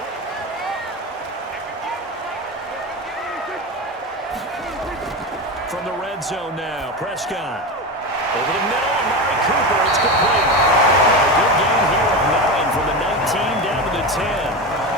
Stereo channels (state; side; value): normal; both; correlation 0.21